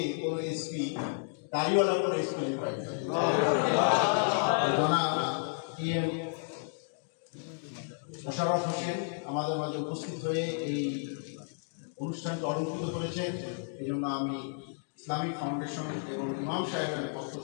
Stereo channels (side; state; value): right; silent; digital silence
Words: কোনো এসপি দাড়িওয়ালা কোনো এসপি পাইনি। PM মোশাররফ হোসেন আমাদের মাঝে উপস্থিত হয়ে এই অনুষ্ঠানকে অলঙ্কৃত করেছেন। এই জন্য আমি ইসলামিক ফাউন্ডেশন এবং ইমাম সাহেবের পক্ষ